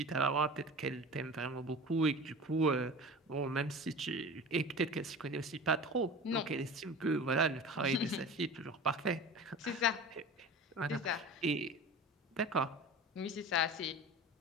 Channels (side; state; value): both; normal; correlation 0.35